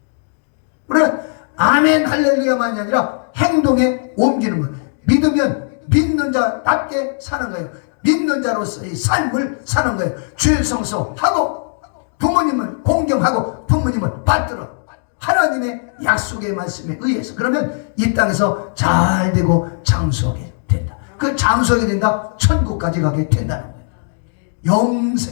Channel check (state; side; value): silent; right; digital silence